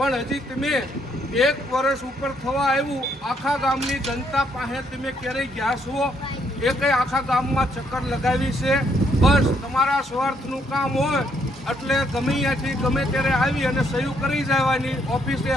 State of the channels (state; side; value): normal; both; correlation 0.72